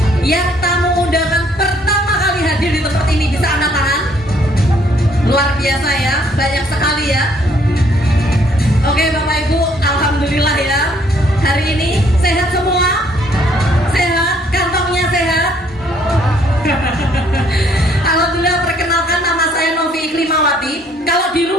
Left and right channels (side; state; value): both; normal; correlation 0.65